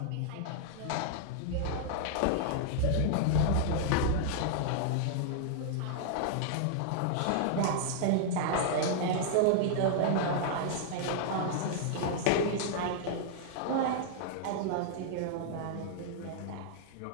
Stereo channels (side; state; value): both; different; correlation -0.01